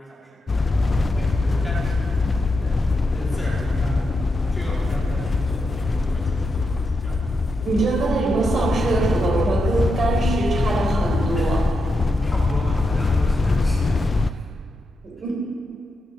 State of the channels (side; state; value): both; normal; correlation 0.85